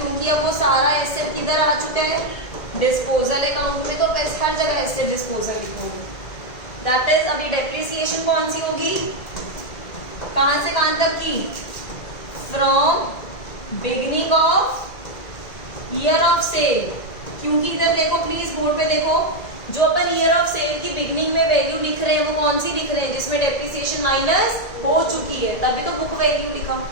अब वो सारा एसेट किधर आ चुका है, डिस्पोजल अकाउंट में, तो हर जगह एसेट डिस्पोजल लिखोगे। दैट इज अभी डेप्रिसिएशन कौन सी होगी, कहां से कहां तक की, from beginning of year of sale. क्योंकि इधर देखो प्लीज, बोर्ड पे देखो, जो अपन ईयर ऑफ सेल की बिगिनिंग में वैल्यू लिख रहे हैं वो कौन सी लिख रहे हैं, जिसमें डेप्रिसिएशन माइनस हो चुकी है, तभी तो बुक वैल्यू लिखा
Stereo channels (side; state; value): right; late; 1.9 ms